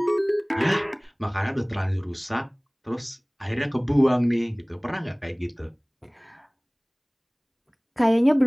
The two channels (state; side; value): identical; both; correlation 1.00